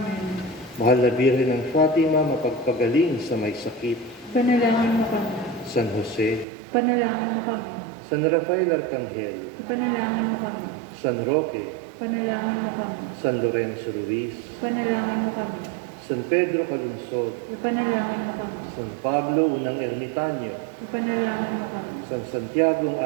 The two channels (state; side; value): drops out; left; at 6.5 s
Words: Mahal na Birhen ng Fatima, mapagpagaling sa may sakit. Panalangin mo kami. San Jose, Panalangin mo kami. San Rafael Arcangel, Panalangin mo kami. San Roque, Panalangin mo kami. San Lorenzo Ruiz, Panalangin mo kami. San Pedro Calungsod, Ipanalangin mo kami. San Pablo Unang Ermitanyo, Ipanalangin mo kami. San Santiago